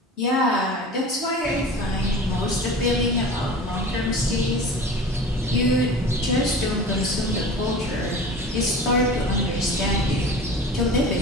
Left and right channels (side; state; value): both; normal; correlation 0.37